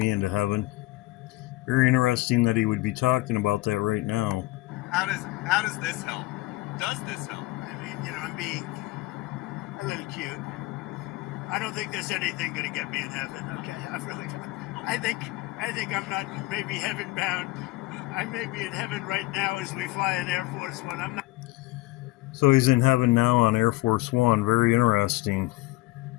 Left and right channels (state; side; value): quieter; right; 19.7 dB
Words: into heaven. Very interesting that he would be talking about that right now. How does this help? Does this help? I mean, I'm being a little cute. I don't think there's anything going to get me in heaven. Okay, I think I'm not maybe heaven bound. I may be in heaven right now as we fly in Air Force One. I'm not. So he's in heaven now on Air Force One. Very interesting.